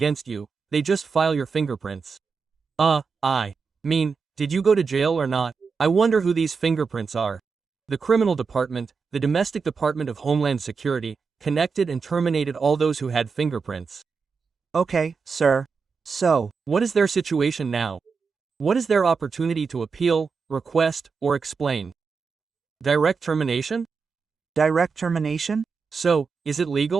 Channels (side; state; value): left; quieter; 5.2 dB